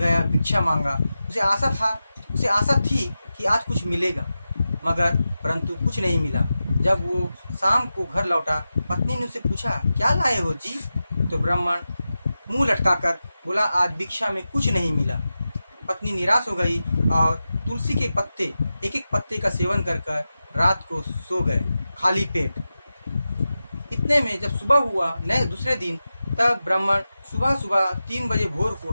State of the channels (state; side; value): inverted; both; correlation -0.93